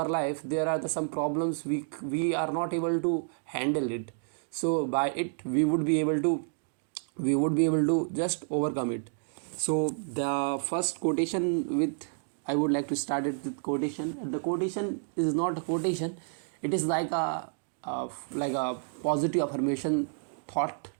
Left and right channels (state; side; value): silent; left; digital silence